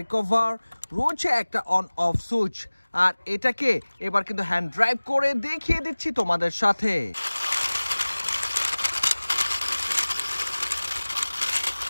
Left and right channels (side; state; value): both; inverted; correlation -1.00